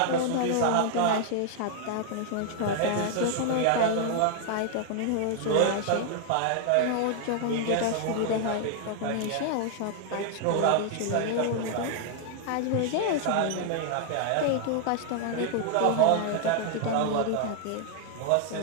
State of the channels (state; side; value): different; both; correlation 0.00